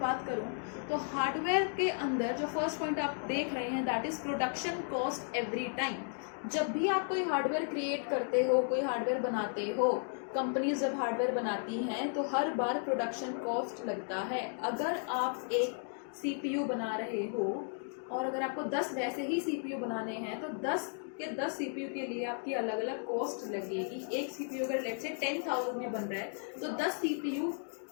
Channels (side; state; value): right; silent; 55 dB below the other